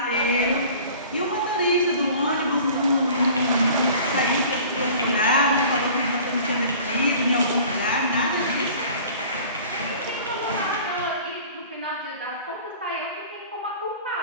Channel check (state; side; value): inverted; both; correlation -0.45